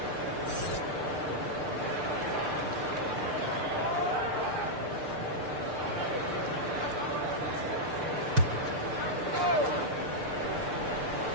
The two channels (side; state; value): left; late; 6.7 ms